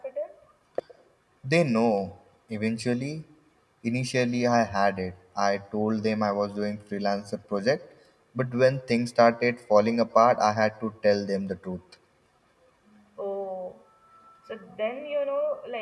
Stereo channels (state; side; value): identical; both; correlation 1.00